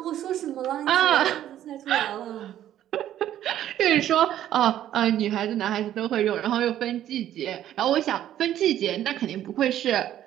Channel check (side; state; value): left; quieter; 11.8 dB